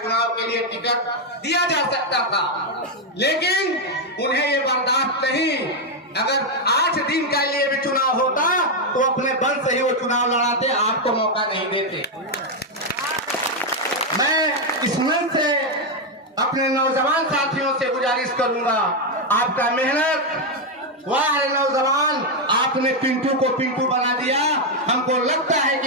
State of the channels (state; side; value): normal; both; correlation 0.03